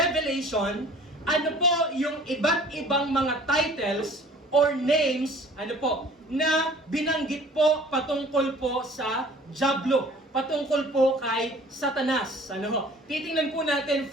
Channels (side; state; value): both; normal; correlation 0.49